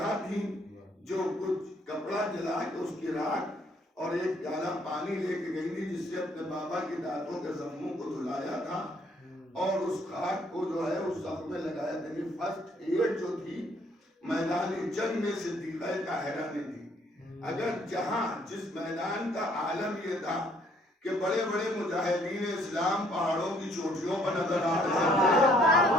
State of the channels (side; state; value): both; normal; correlation 0.64